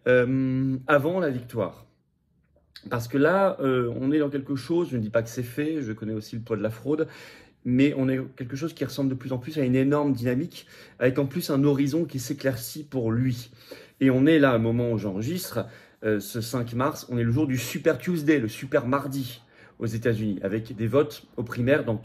avant la victoire. Parce que là, on est dans quelque chose, je ne dis pas que c'est fait, je connais aussi le poids de la fraude, mais on est quelque chose qui ressemble de plus en plus à une énorme dynamique, avec en plus un horizon qui s'éclaircit pour lui. Et on est là, au moment où j'enregistre, ce 5 mars, on est le jour du Super Tuesday, le Super Mardi aux États-Unis, avec des votes aux primaires dans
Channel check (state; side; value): identical; both; correlation 1.00